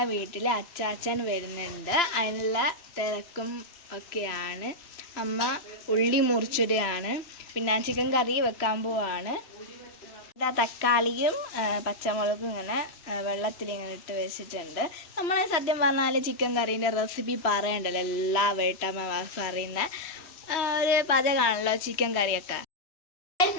വീട്ടിൽ അച്ചാച്ചൻ വരുന്നുണ്ട്. അതിനുള്ള തിരക്കും ഒക്കെയാണ്. അമ്മ ഉള്ളി മുറിച്ചിടുകയാണ്. പിന്നെ ചിക്കൻ കറി വെക്കാൻ പോവാണ്. ഇതാ തക്കാളിയും പച്ചമുളകും ഇങ്ങനെ വെള്ളത്തിലിങ്ങനെ ഇട്ട് വെച്ചിട്ടുണ്ട്. നമ്മൾ സത്യം പറഞ്ഞാൽ ചിക്കൻ കറീൻ്റെ റെസിപ്പി പറയണ്ടല്ലോ, എല്ലാ വീട്ടമ്മമാർക്കും അറിയുന്ന ഒരു പാചകമാണല്ലോ ചിക്കൻ കറിയൊക്കെ.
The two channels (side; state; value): right; late; 3.0 ms